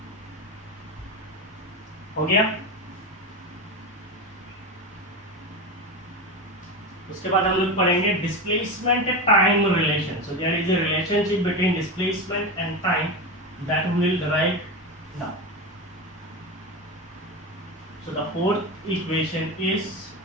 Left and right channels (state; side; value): normal; both; correlation 0.20